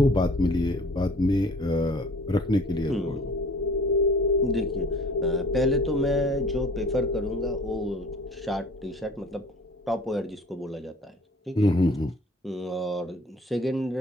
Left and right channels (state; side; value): normal; both; correlation 0.49